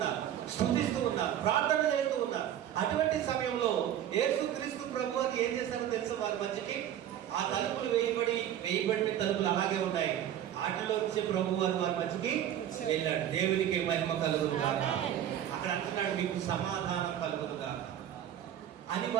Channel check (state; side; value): quieter; left; 10.9 dB